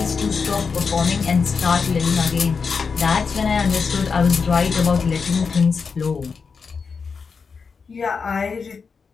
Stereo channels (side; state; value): right; quieter; 5.3 dB